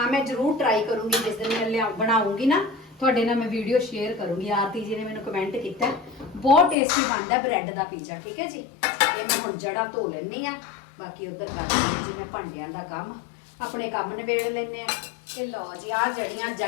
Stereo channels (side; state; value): right; drops out; at 6.8 s